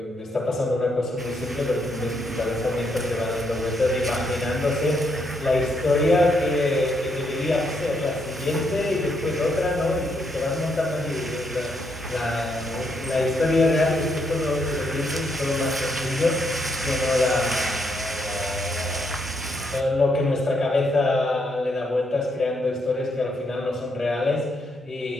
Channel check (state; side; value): normal; both; correlation 0.76